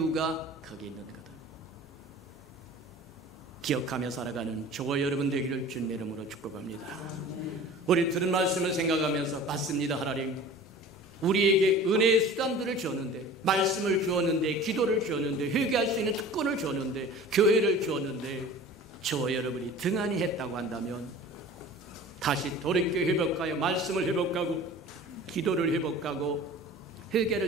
거기 있는 거다. 기억하며 살아가는 저와 여러분 되기를 주님의 이름으로 축복합니다. 우리 들은 말씀을 생각하면서, 맞습니다 하나님, 우리에게 은혜의 수단들을 주었는데, 말씀을 주었는데, 기도를 주었는데, 회개할 수 있는 특권을 주었는데, 교회를 주었는데, 저와 여러분이 등한히 했다고 한다면 다시 돌이켜 회복하여 말씀을 회복하고, 기도를 회복하고,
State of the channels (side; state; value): both; normal; correlation 0.41